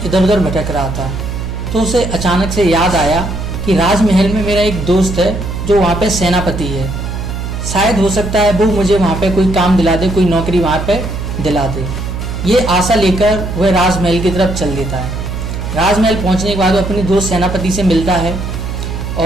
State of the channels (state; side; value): noise; right; hum, 5 dB below the sound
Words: उधर भटक रहा था। तो उसे अचानक से याद आया कि राजमहल में मेरा एक दोस्त है जो वहाँ पे सेनापति है, शायद हो सकता है वो मुझे वहाँ पे कोई काम दिला दे, कोई नौकरी वहाँ पे दिला दे। ये आशा लेकर वह राजमहल की तरफ चल देता है। राजमहल पहुँचने के बाद वो अपने दोस्त सेनापति से मिलता है